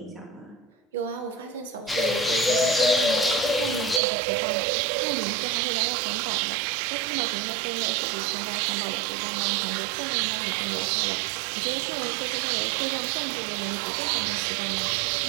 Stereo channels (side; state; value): left; drops out; at 4.0 s